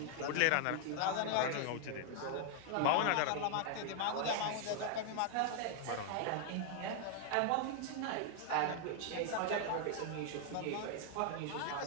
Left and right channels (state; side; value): different; both; correlation 0.00